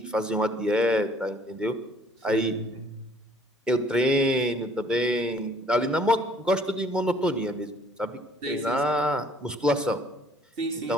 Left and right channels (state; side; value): normal; both; correlation 0.59